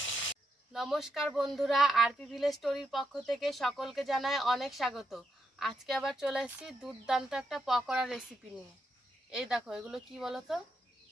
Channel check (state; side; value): normal; both; correlation 0.82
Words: নমস্কার বন্ধুরা, আরপি ভিলেজ স্টোরির পক্ষ থেকে সকলকে জানাই অনেক স্বাগত। আজকে আবার চলে এসেছি দুর্দান্ত একটা পকোড়া রেসিপি নিয়ে। এই দেখো, এগুলো কি বলো তো,